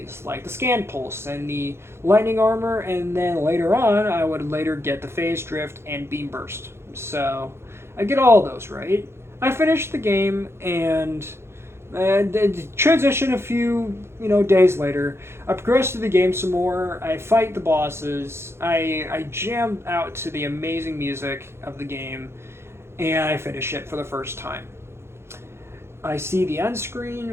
like the Scan Pulse and the Lightning Armor, and then later on I would later get the Phase Drift and Beam Burst. So I get all those, right? I finish the game and transition a few days later. I progress through the game some more. I fight the bosses. I jam out to the amazing music of the game, and I finish it for the first time. I see the end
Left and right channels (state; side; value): late; left; 0.12 ms